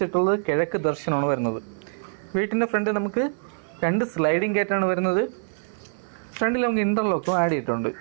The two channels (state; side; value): silent; left; 56 dB below the other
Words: ചുറ്റുള്ളത്. കിഴക്ക് ദർശനമാണ് വരുന്നത്. വീട്ടിൻ്റെ ഫ്രണ്ട് നമുക്ക് 2 സ്ലൈഡിംഗ് ഗേറ്റാണ് വരുന്നത്. ഫ്രണ്ടിൽ നമുക്ക് ഇൻ്റർലോക്കും ആഡ് ചെയ്തിട്ടുണ്ട്.